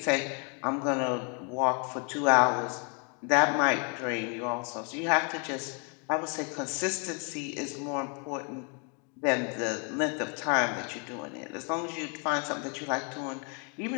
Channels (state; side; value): quieter; right; 37.0 dB